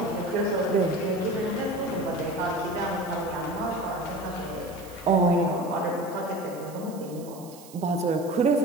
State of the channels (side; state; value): right; noise; hiss, 20 dB below the sound